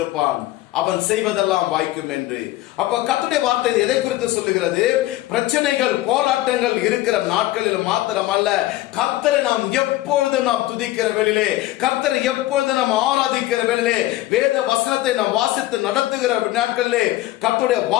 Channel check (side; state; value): right; quieter; 16.4 dB